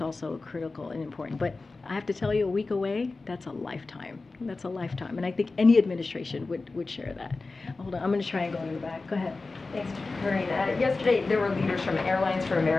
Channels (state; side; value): quieter; right; 3.6 dB